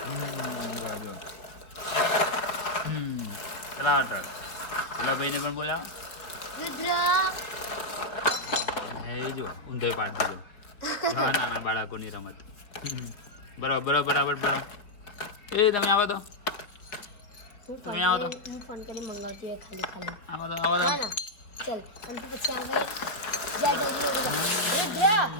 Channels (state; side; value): late; right; 4.5 ms